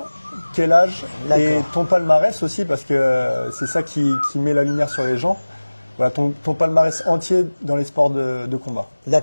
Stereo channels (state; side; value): inverted; both; correlation -1.00